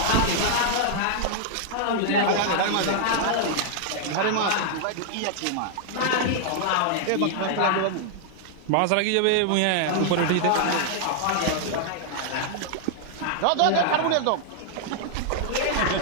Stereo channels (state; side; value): different; both; correlation -0.01